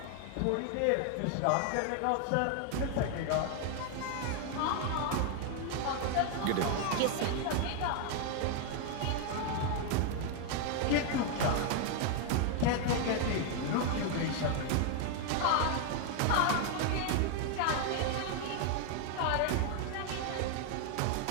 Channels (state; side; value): different; both; correlation 0.00